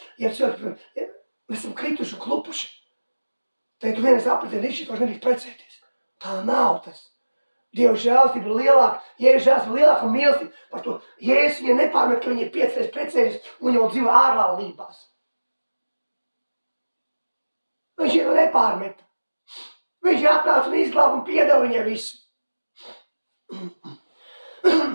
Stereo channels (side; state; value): both; inverted; correlation -1.00